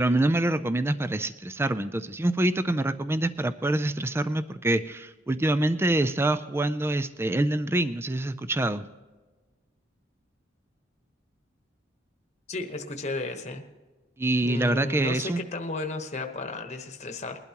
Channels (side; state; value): both; normal; correlation 0.73